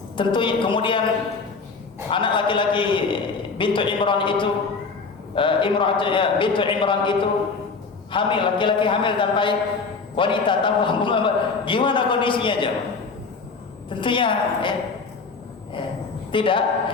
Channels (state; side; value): quieter; right; 4.6 dB